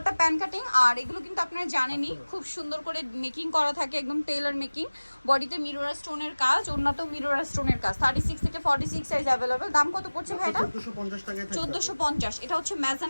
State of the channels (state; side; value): inverted; both; correlation -1.00